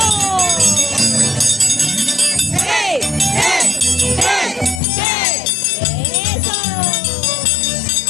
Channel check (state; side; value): drops out; right; at 4.8 s